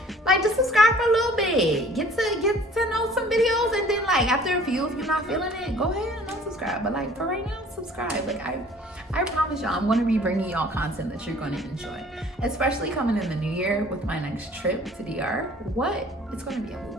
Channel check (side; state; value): both; normal; correlation 0.52